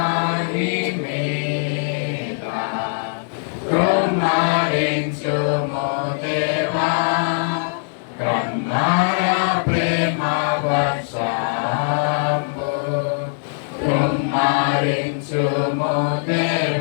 కృమ్మరించుము దేవా, కృమ్మర ప్రేమ వర్షంబు కృమ్మరించుము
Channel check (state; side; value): silent; right; digital silence